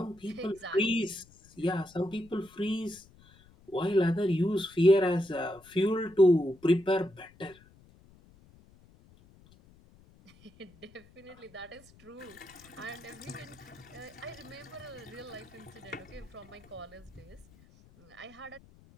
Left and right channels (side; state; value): left; noise; rumble, 26 dB below the sound